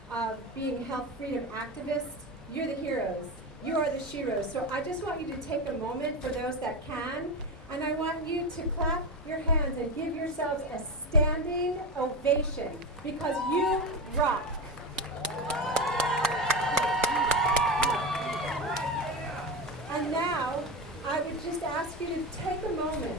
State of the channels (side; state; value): both; normal; correlation 0.20